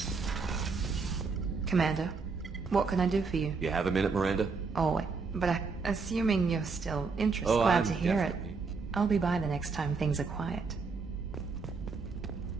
Commander, what can I do for you? You have a minute, Miranda? Oh, but assuming you're still interested, Oh, glad I'm to hear definitely... it. I'll be by the next time things are quiet.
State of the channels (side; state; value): left; quieter; 4.7 dB